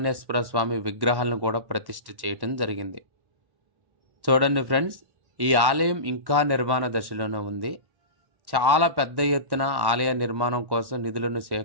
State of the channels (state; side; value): late; left; 1.1 ms